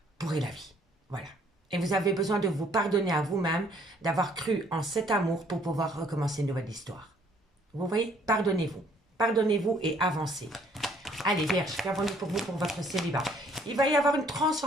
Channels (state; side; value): normal; both; correlation 0.62